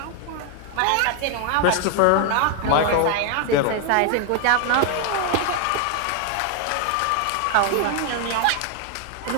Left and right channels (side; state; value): both; different; correlation 0.01